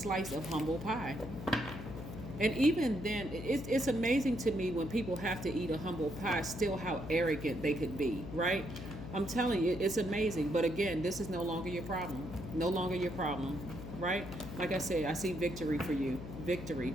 of humble pie. And even then, it's amazing to me when people have to eat a humble pie, still how arrogant they could be, right? I'm telling you, it's amazing. But again, this is no longer your problem. No longer your problem. Right? Like I said, I see victory for you. Victory,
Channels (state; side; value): noise; left; hum, 9 dB below the sound